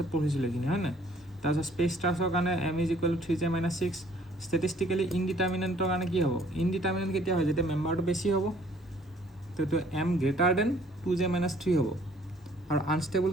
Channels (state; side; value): normal; both; correlation 0.59